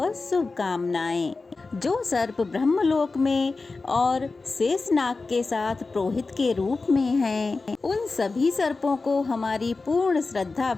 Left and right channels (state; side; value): quieter; right; 3.8 dB